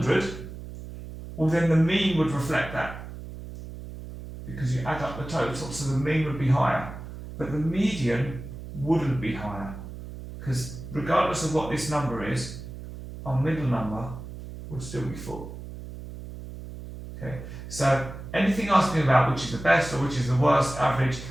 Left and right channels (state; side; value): noise; right; hum, 11 dB below the sound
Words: well, then the mean would reflect that, because you add up the total, so the mean would be higher. But the median wouldn't be higher, because regardless of what this number is, our middle number would still be 4. Okay, so anything asking about which is the best or which is the worst average,